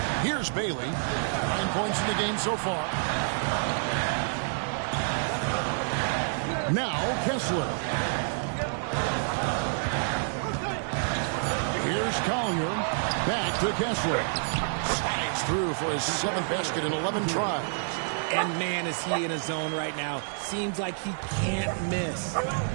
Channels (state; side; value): silent; left; digital silence